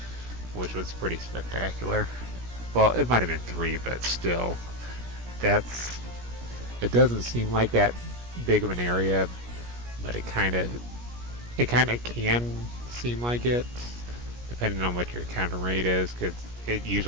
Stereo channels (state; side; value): late; left; 17 ms